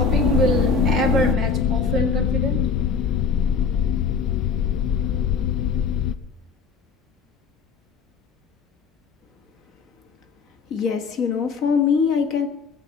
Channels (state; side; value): quieter; right; 5.5 dB